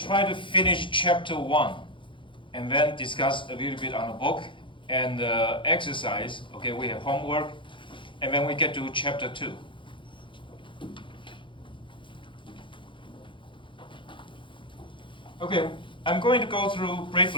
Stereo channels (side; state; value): right; late; 0.24 ms